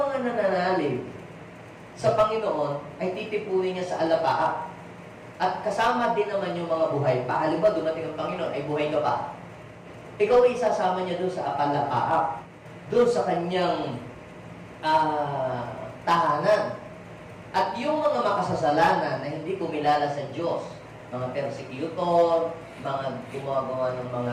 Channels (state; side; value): identical; both; correlation 1.00